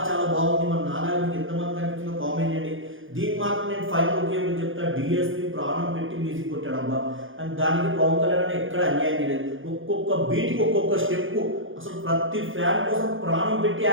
చాలా బాగుంది. మరి నాలాగా మీకు ఎంతమంది కనిపించిందో కామెంట్ చేయండి. దీనికి మాత్రం నేను ఫైనల్ ఒకే చెప్తా, డిఎస్పీ ప్రాణం పెట్టి మ్యూజిక్ కొట్టాడబ్బా. అండ్ దానికి పవన్ కళ్యాణ్ ఎక్కడ అన్యాయం చేయలేదు. ఒక్కొక్క బీట్కి ఒక్కొక్క స్టెప్ అసలు ప్రతి ఫ్యాన్ కోసం ప్రాణం పెట్టి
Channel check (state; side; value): late; left; 0.58 ms